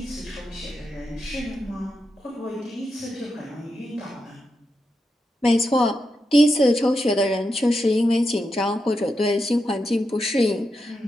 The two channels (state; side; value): normal; both; correlation 0.86